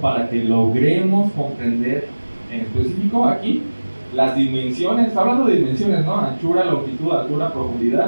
que logremos comprender en específico aquí las dimensiones, hablando de dimensiones, ¿no? Anchura, longitud, altura,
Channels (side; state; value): both; inverted; correlation -1.00